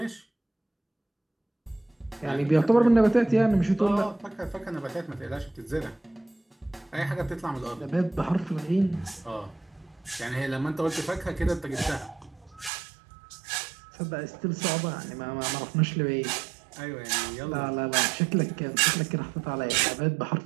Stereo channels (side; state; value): left; drops out; at 12.7 s